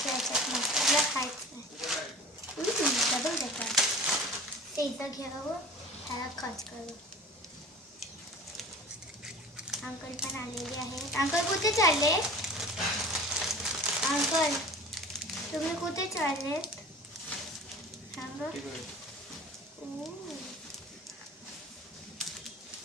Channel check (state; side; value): normal; both; correlation 0.40